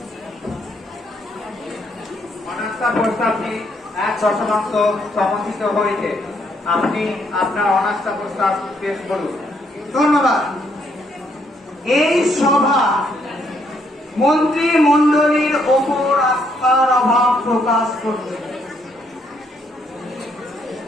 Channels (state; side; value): normal; both; correlation 0.71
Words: অনাস্থা প্রস্তাবটি 1/1 সমর্থিত হয়েছে। আপনি আপনার অনাস্থা প্রস্তাব পেশ করুন। ধন্যবাদ। এই সভা মন্ত্রিমণ্ডলীর ওপর আস্থার অভাব প্রকাশ করছে।